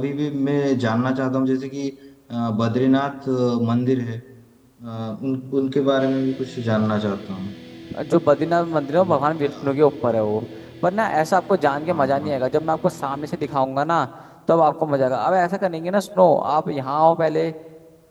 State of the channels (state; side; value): identical; both; correlation 1.00